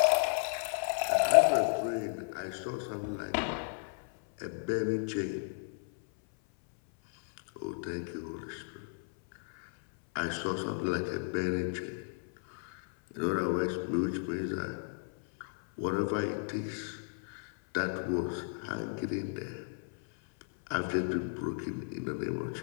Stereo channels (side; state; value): right; silent; 55 dB below the other